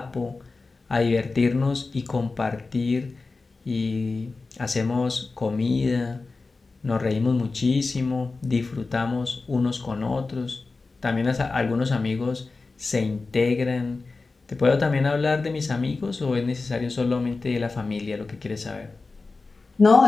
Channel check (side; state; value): right; quieter; 3.8 dB